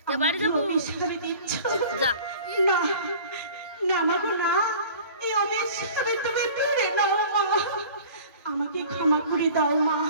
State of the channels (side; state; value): both; inverted; correlation -0.45